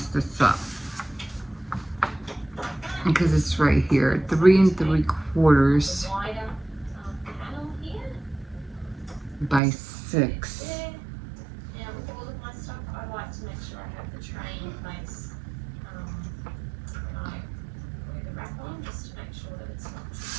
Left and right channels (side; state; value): left; drops out; at 9.6 s